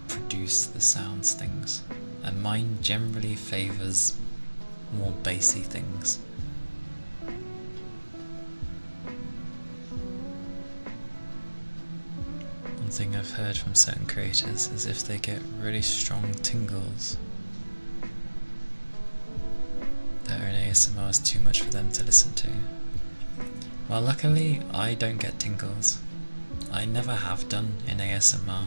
produce the sounds things. And mine generally favours more bassy things. One thing I've heard from certain creators is if they get really strong tingles, that an ASMR is too much for them to listen to. Well, luckily I don't get tingles. I never have done in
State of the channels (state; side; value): inverted; both; correlation -1.00